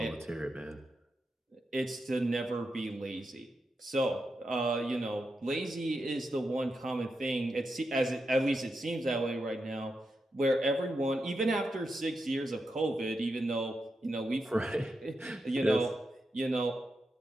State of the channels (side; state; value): both; normal; correlation 0.86